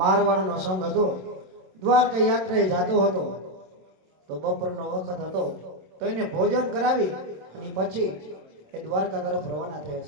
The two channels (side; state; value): left; late; 27 ms